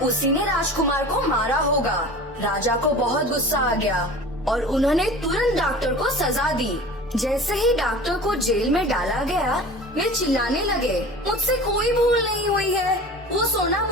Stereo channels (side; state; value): both; normal; correlation 0.38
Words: उसी ने राजकुमार को मारा होगा। राजा को बहुत गुस्सा आ गया और उन्होंने तुरंत डॉक्टर को सजा दी। जैसे ही डॉक्टर को जेल में डाला गया, वे चिल्लाने लगे, मुझसे कोई भूल नहीं हुई है। वो सोना